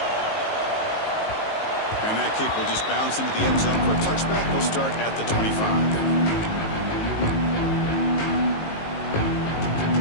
And that kick will just bounce into the end zone for a touchback. They'll start at the 25.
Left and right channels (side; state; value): right; late; 19 ms